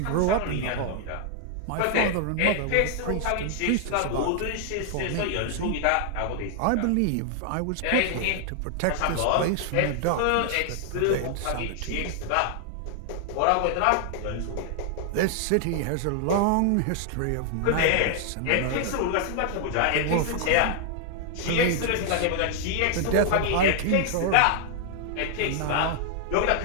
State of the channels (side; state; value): both; different; correlation 0.00